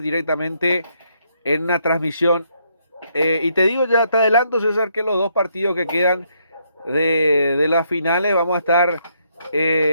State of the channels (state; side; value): inverted; both; correlation -0.73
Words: directamente en una transmisión. Y te digo ya, te adelanto, César, que los dos partidos que quedan de las finales vamos a estar